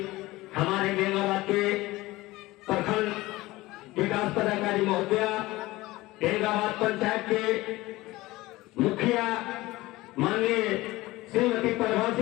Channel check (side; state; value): right; quieter; 19.1 dB